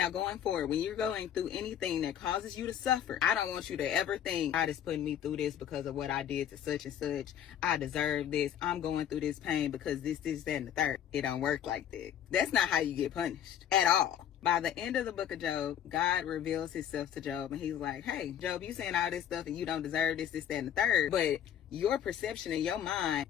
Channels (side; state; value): right; quieter; 9.9 dB